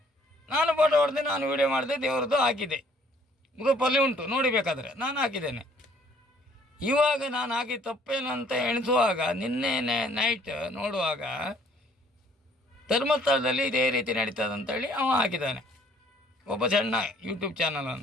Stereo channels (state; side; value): normal; both; correlation 0.61